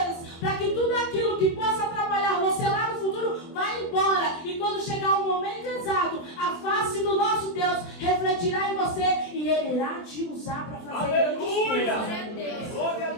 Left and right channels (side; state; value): right; late; 24 ms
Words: para que tudo aquilo que possa atrapalhar você lá no futuro, vá embora. E quando chegar o momento exato, a face do nosso Deus refletirá em você e Ele irá te usar para fazer grandes coisas. Glória a